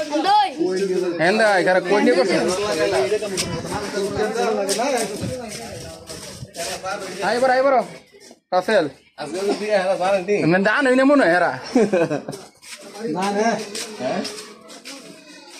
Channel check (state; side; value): identical; both; correlation 1.00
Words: আইবার রাসেল দান হইনে মনে হয় হেরা